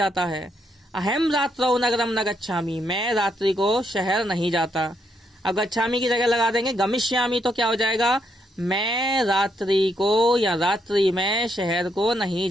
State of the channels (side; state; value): both; normal; correlation 0.77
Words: है। अहम रात्रौ नगरम न गच्छामि, मैं रात्रि को शहर नहीं जाता। अब गच्छामि की जगह लगा देंगे गमिष्यामि, तो क्या हो जाएगा, मैं रात्रि को या रात्रि में शहर को नहीं